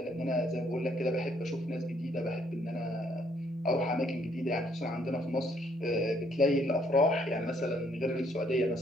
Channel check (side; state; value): both; normal; correlation 0.67